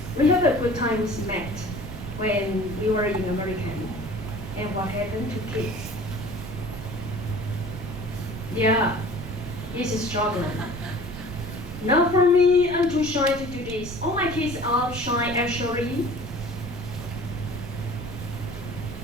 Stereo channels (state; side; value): noise; right; rumble, 11 dB below the sound